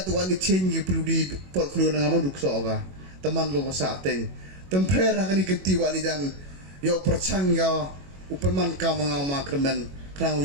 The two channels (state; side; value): late; left; 21 ms